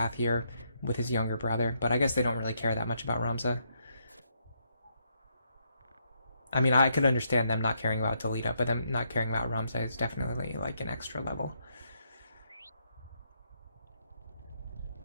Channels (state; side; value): inverted; both; correlation -0.76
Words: here with his younger brother, but I guess they don't really care that much about Ramza. I mean, I could understand them not caring about Delita, but them not caring about Ramza is definitely an extra level.